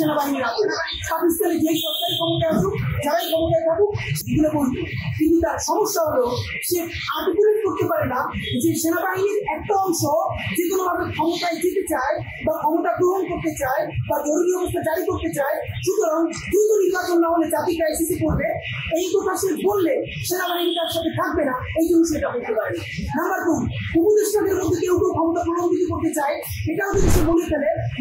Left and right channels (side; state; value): both; identical; correlation 1.00